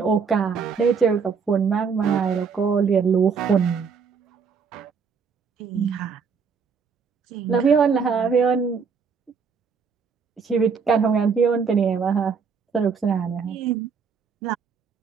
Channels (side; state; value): left; quieter; 5.8 dB